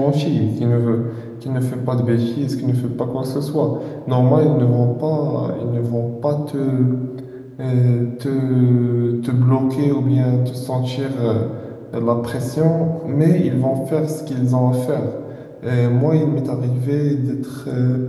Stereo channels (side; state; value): both; identical; correlation 1.00